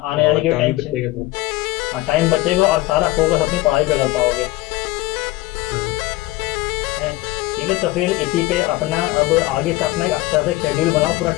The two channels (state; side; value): quieter; right; 18.7 dB